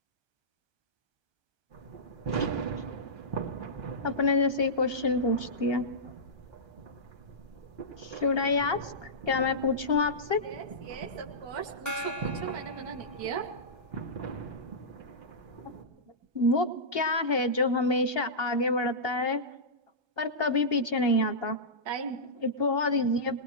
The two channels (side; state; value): left; late; 1.3 ms